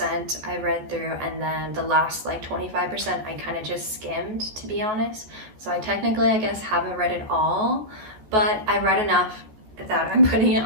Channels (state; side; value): late; left; 14 ms